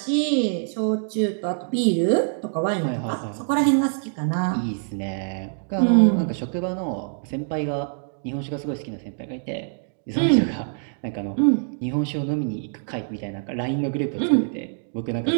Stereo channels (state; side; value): silent; left; digital silence